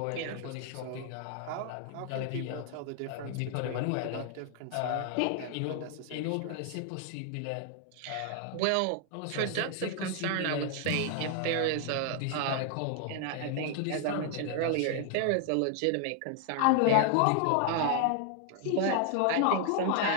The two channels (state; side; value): different; both; correlation 0.00